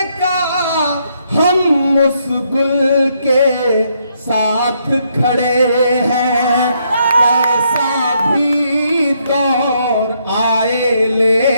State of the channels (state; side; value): inverted; both; correlation -0.74